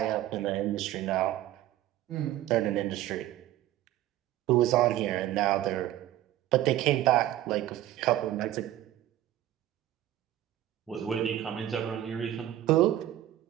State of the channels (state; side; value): quieter; left; 13.4 dB